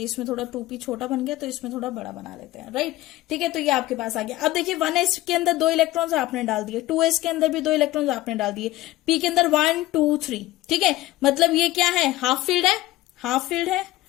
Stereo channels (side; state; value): right; quieter; 16.8 dB